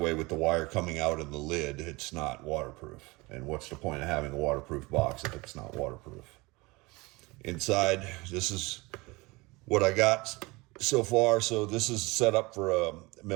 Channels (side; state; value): left; quieter; 23.7 dB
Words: with the wire coming out of the lid, it's not waterproof. And what's the point of having a waterproof box if it's not waterproof? Inside, this is what I got so far. So this is set up for a